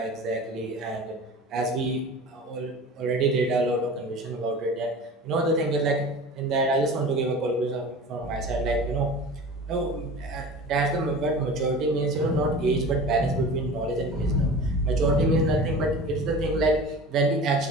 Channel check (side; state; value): both; normal; correlation 0.37